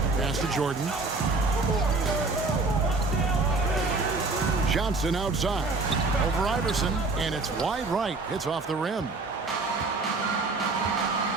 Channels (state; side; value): quieter; left; 3.6 dB